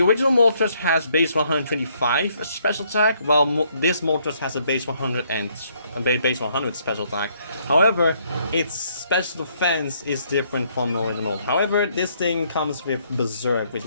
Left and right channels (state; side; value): inverted; both; correlation -0.69